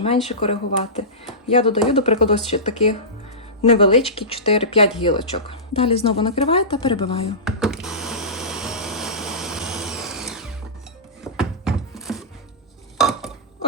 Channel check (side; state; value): both; normal; correlation -0.19